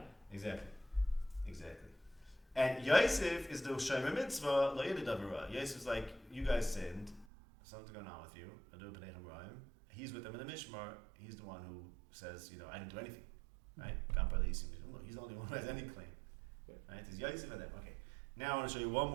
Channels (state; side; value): drops out; left; at 7.2 s